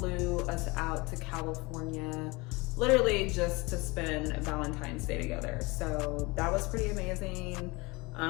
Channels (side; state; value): right; quieter; 24.9 dB